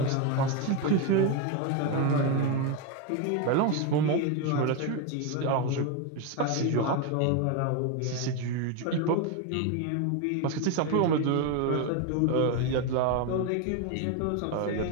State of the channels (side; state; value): both; different; correlation 0.03